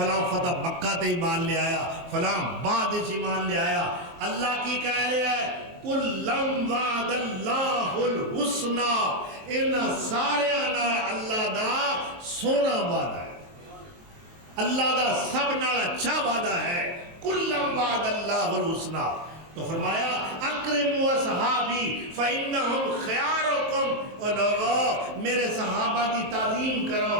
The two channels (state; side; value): late; left; 23 ms